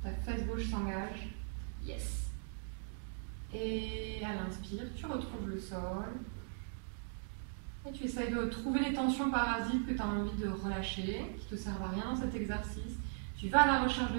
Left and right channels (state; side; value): silent; left; digital silence